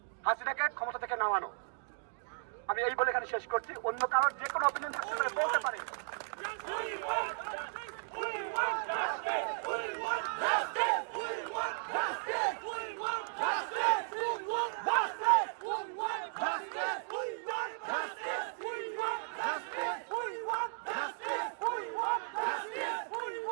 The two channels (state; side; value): silent; left; digital silence